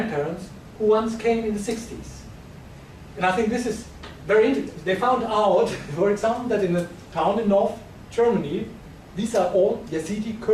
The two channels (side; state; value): both; identical; correlation 1.00